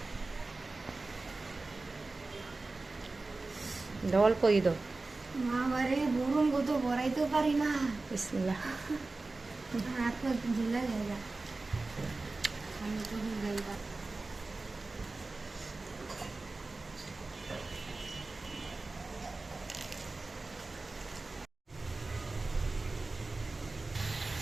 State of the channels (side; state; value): left; quieter; 3.4 dB